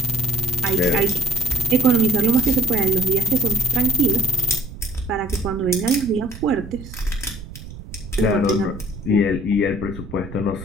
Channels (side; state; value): right; noise; rumble, 13 dB below the sound